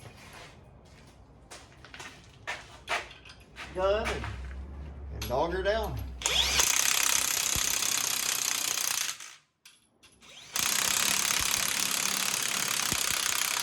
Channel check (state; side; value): identical; both; correlation 1.00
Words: Gun and dog her down.